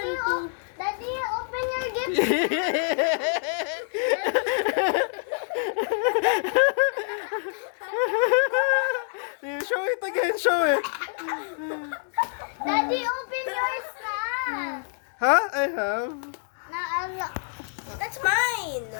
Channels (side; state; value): right; silent; digital silence